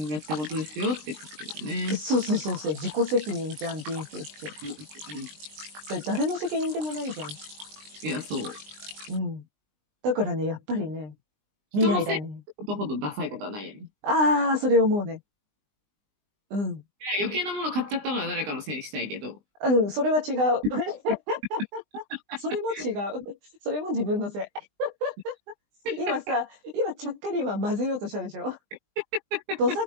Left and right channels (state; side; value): late; left; 20 ms